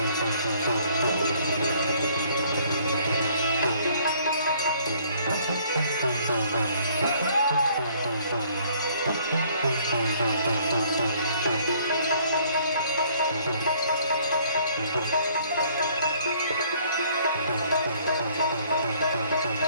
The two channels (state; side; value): inverted; both; correlation -0.60